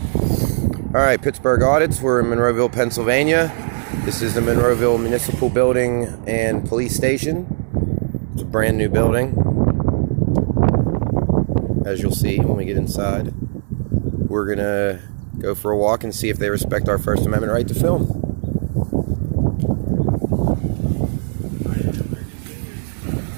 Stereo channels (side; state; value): left; silent; 61 dB below the other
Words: right, Pittsburgh Audits. We're in Monroeville, Pennsylvania. This is the Monroeville Municipal Building and Police Station. It's a brand new building, as you'll see when we get inside. We're gonna go for a walk and see if they respect our First Amendment right to film.